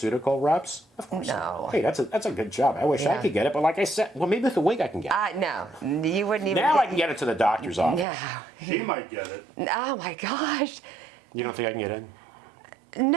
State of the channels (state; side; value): drops out; left; at 8.1 s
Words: reps? Of course. No. not. Hey, that's a good job. I wish I Yeah. could get it, but like I said, well, maybe with a week I can get it. No. You wouldn't even. Now I can get it to the doctor's office. Yeah. She might get it. Oh, my gosh. You don't think I can get in?